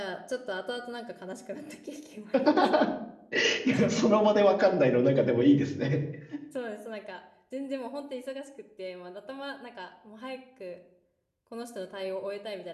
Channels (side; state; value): both; identical; correlation 1.00